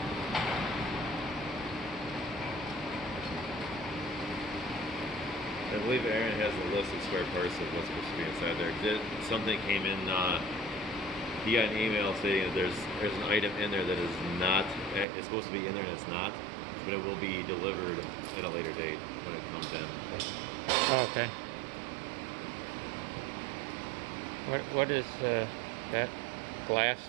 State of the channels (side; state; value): left; drops out; at 15.1 s